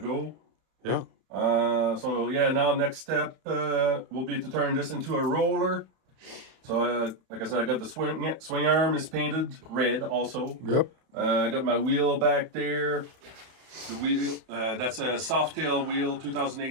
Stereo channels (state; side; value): late; left; 31 ms